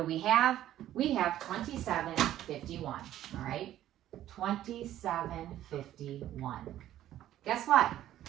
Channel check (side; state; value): left; quieter; 12.7 dB